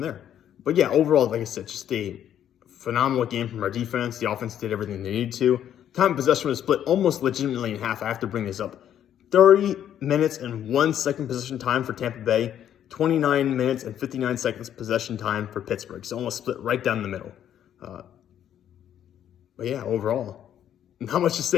there. But yeah, overall, like I said, just a phenomenal game from our defense. The offense did everything they needed to. Time of possession was split almost legitimately in half. I have to bring this up. 30 minutes and 1 second possession time for Tampa Bay. 29 minutes and 59 seconds possession time for Pittsburgh. So almost split right down the middle. But yeah, overall, not much to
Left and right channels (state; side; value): quieter; right; 10.3 dB